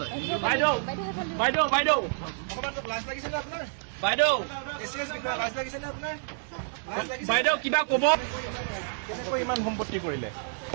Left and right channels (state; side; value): silent; left; digital silence